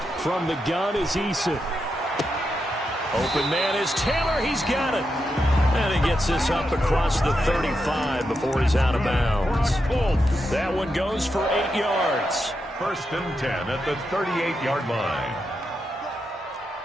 From the gun is Eason. Open man is Taylor. He's got it. And he gets this up across the 35 before he's out of bounds. That one goes for 8 yards. 1st and 10 at the 38-yard line.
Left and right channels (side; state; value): both; normal; correlation 0.85